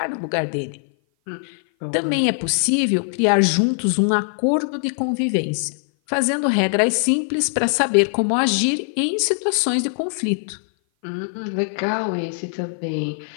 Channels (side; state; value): right; silent; 57 dB below the other